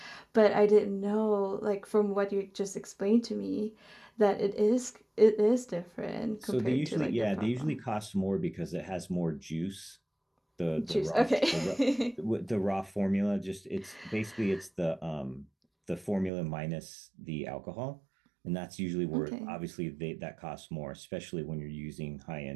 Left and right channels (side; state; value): left; drops out; at 16.3 s